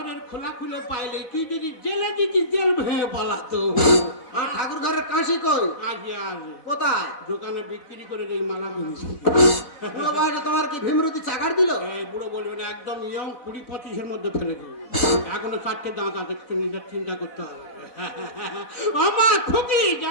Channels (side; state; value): right; late; 4.0 ms